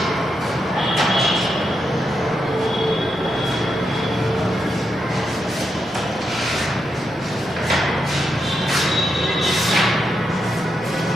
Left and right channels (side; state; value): right; noise; rumble, 27 dB below the sound